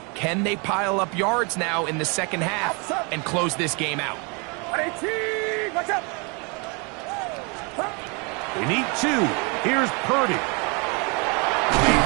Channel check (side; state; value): left; quieter; 32.1 dB